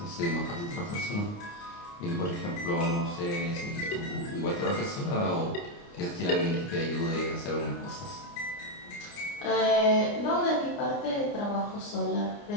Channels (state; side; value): late; right; 29 ms